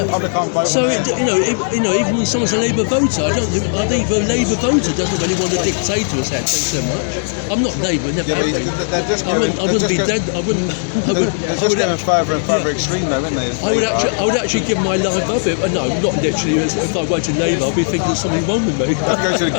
public can't vote. So even when someone's a Labour voter, I think a Labour voter doesn't really want a dictator as head so much. I'm not Labour, never have been. I wouldn't be dead. I would going further and further extreme though, isn't they? I would actually give my life up. No, not literally. If I went to Labour, I'd be thinking there's something wrong with me. I'd go to the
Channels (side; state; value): right; silent; 68 dB below the other